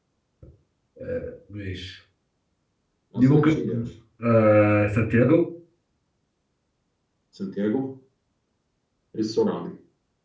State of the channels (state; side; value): identical; both; correlation 1.00